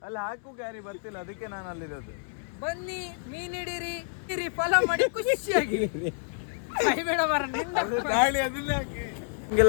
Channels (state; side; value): silent; right; digital silence